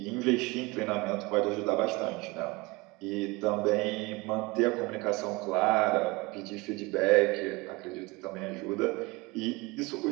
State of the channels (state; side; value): quieter; left; 23.8 dB